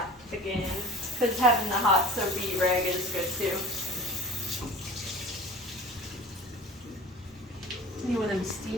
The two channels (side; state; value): both; normal; correlation 0.41